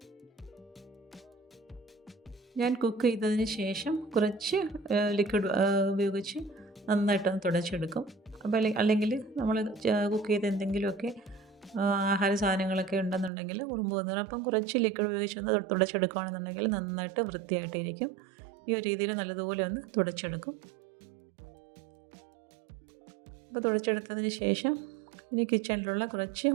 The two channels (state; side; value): drops out; left; at 13.3 s